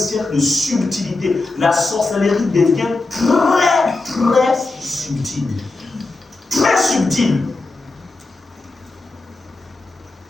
de subtilité. La sorcellerie devient très, très subtile. Très subtile.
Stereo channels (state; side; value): quieter; right; 3.3 dB